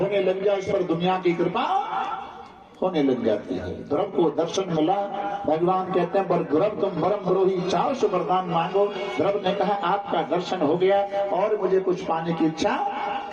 लग जाए उस पर दुनिया की कृपा होने लग जाती है। ध्रुव को दर्शन मिला, भगवान कहते हैं पर ध्रुव तुम परम द्रोही, चाहो सो वरदान मांगो। ध्रुव ने कहा आपका दर्शन हो गया और मुझे कुछ पाने की इच्छा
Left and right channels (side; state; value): both; identical; correlation 1.00